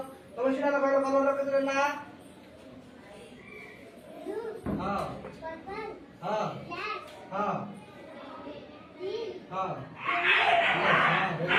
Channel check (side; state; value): both; identical; correlation 1.00